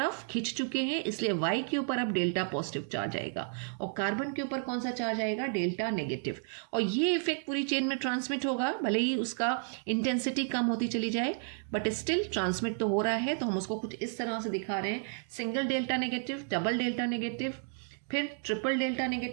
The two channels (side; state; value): left; silent; 56 dB below the other